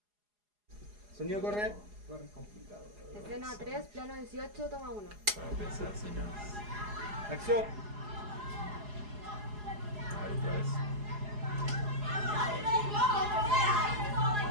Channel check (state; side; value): late; left; 4.8 ms